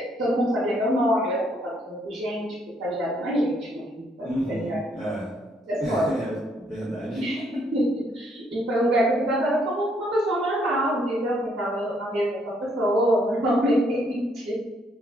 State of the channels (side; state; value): both; normal; correlation 0.69